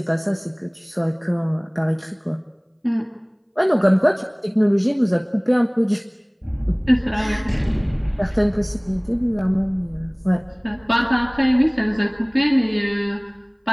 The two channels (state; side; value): identical; both; correlation 1.00